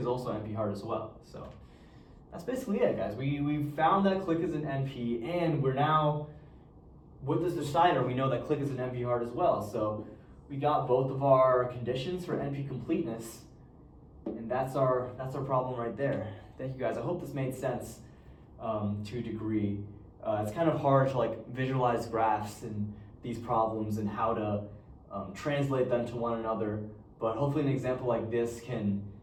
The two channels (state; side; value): identical; both; correlation 1.00